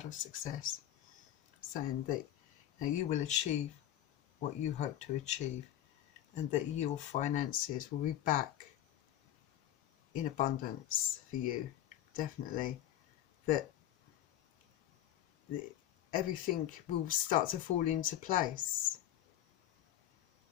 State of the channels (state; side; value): quieter; right; 12.2 dB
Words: of success, saying that, you know, you will achieve what you hope to achieve, and that your finances will be back in abundance for you, definitely. That everything will start to fall into place.